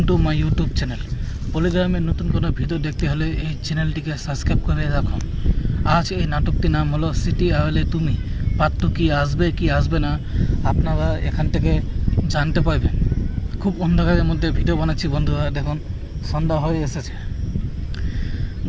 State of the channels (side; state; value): both; identical; correlation 1.00